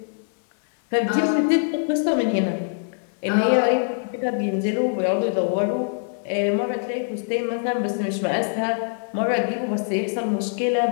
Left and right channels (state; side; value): silent; right; 63 dB below the other